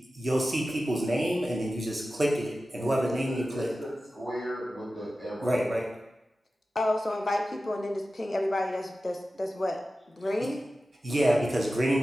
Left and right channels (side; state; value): both; normal; correlation 0.94